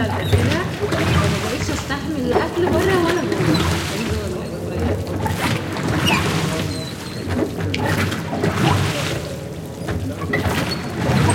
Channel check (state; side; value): identical; both; correlation 1.00